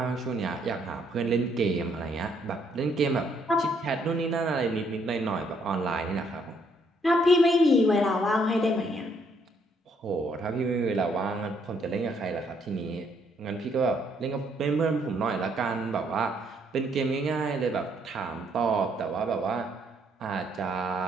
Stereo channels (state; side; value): normal; both; correlation 0.70